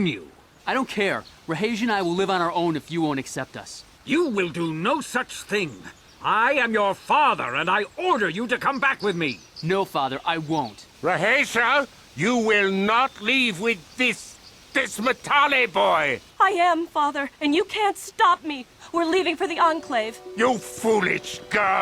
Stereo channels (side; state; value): both; identical; correlation 1.00